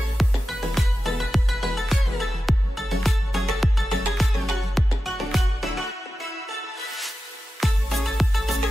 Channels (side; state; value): both; normal; correlation 0.93